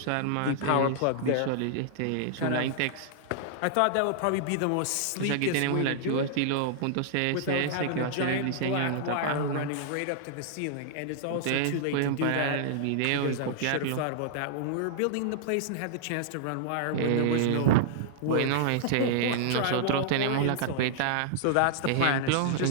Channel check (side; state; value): both; different; correlation -0.01